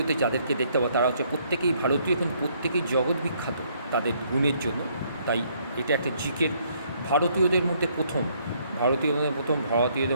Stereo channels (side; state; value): both; inverted; correlation -0.68